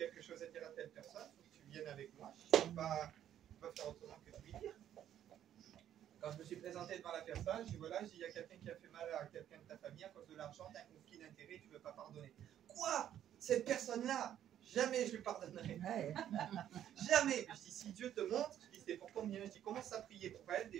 chose à dire à telle personne, il faut que tu viennes avec moi. Je ne peux pas faire autrement que de lui dire. Quand je me suis présenté devant la personne, je dis voilà, il y a quelqu'un qui a fait mal à quelqu'un de ta famille à cause de l'argent, tu as un conflit d'intérêt, tu ne veux pas pardonner. Quoi? Cette personne-là, jamais je lui pardonnerai. Jamais. Je dis si Dieu te montre, je dis c'est pour combien? Je dis commence à prier pour elle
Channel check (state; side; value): quieter; left; 10.8 dB